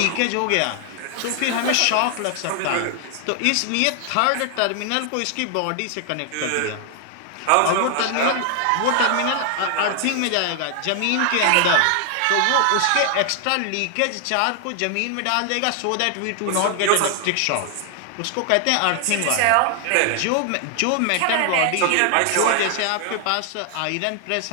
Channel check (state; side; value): different; both; correlation 0.00